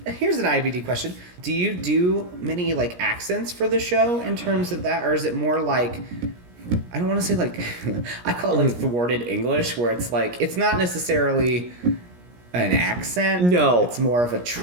Here's an IABD question. Do you do many, like, accents for the show in terms of that? Or is it more like, I don't want to say, like, I call it, like, thwarted English, where it's, like, it's not necessarily an accent. No. It's more of a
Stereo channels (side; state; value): left; late; 17 ms